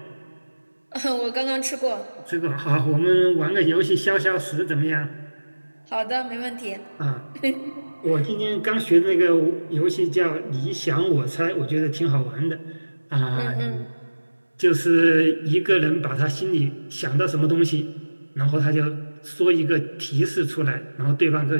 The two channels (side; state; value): both; inverted; correlation -1.00